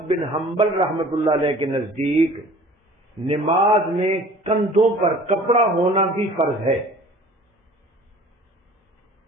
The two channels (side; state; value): both; normal; correlation 0.47